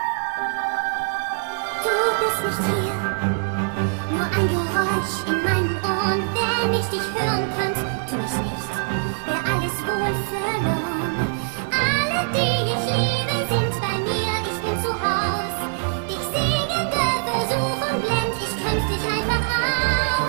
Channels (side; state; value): left; silent; digital silence